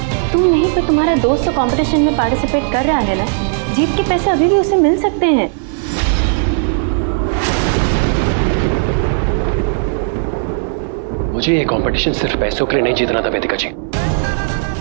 तुम नहीं पर तुम्हारा दोस्त तो कंपटीशन में पार्टिसिपेट कर रहा है ना, जीत के पैसे अभी भी उसे मिल सकते हैं। मुझे ये कंपटीशन सिर्फ पैसों के लिए नहीं जीतना था वेदिका जी,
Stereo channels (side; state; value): left; silent; digital silence